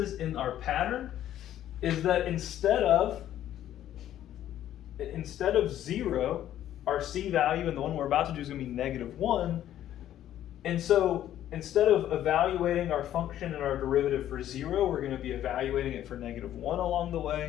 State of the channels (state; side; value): quieter; right; 11.9 dB